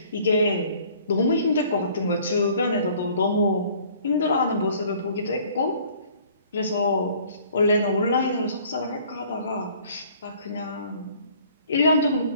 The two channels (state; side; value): inverted; both; correlation -0.55